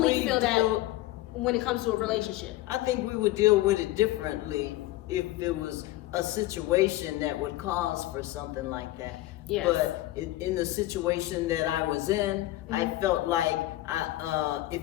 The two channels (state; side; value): quieter; right; 16.7 dB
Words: we feel that deal- when it comes to a relationship. I think we would deal with it differently if it was a situation that would cause for something like that. Yes. But in the situation that I was in, I felt like